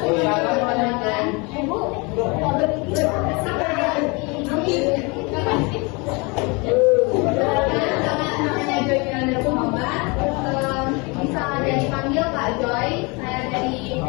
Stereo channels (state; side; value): quieter; right; 28.7 dB